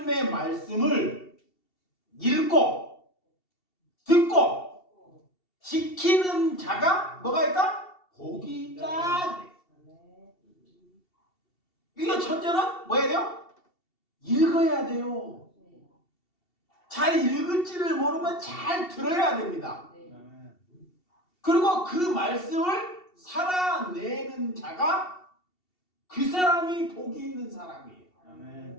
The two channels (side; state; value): right; late; 2.7 ms